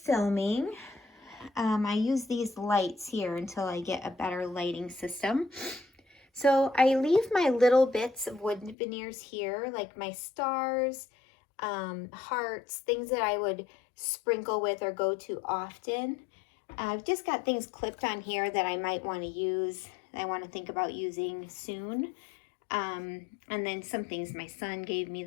I use these lights here until I get a better lighting system. So I leave my little bits of wood veneers here, like my stars, hearts, things that I would sprinkle with or go to often. I've just got things clipped on here that I might want to use, that I want to think about using soon. And then some things, my son gave me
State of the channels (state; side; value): drops out; right; at 8.8 s